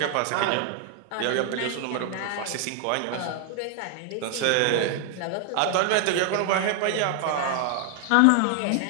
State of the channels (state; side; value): different; both; correlation 0.00